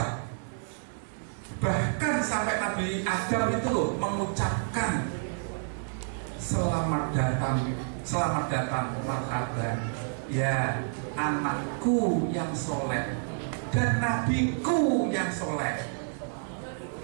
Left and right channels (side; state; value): left; silent; digital silence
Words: Bahkan sampai Nabi Adam itu loh mengucapkan selamat datang marhaban ya anakku yang soleh dan nabiku yang soleh.